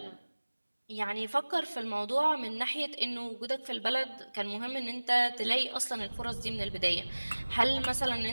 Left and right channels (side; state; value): both; inverted; correlation -1.00